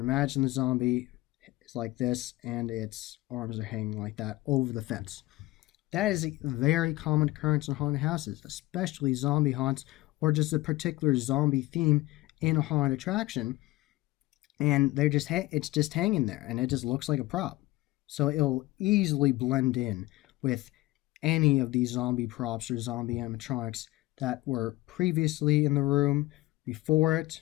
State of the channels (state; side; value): quieter; right; 19.0 dB